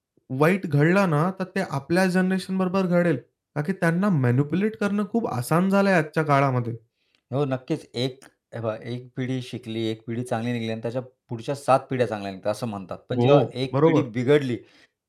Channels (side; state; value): both; identical; correlation 1.00